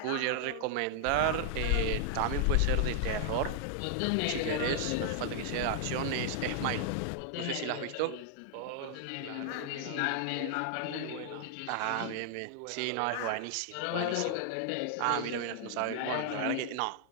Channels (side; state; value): both; different; correlation 0.00